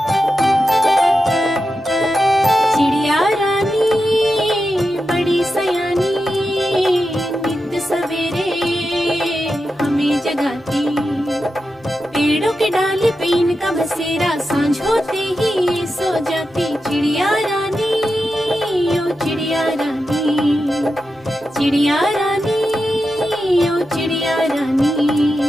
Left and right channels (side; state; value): both; normal; correlation 0.89